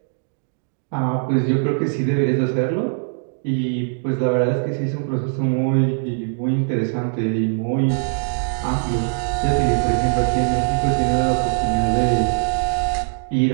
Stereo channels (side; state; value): left; silent; digital silence